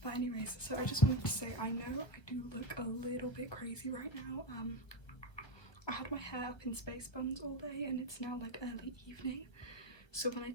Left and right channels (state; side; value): late; right; 1.3 ms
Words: But anyways, so I just wanted to say, I know I do look a little bit crazy right now. I had my hair up in space buns all day and it's now like early evening. So when I